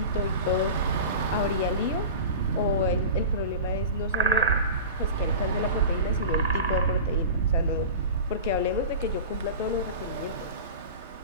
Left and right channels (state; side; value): inverted; both; correlation -0.33